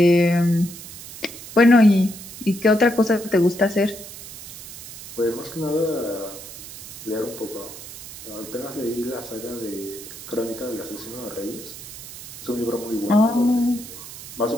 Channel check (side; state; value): right; noise; hiss, 13 dB below the sound